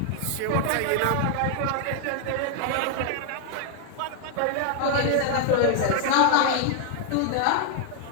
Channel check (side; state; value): both; different; correlation 0.00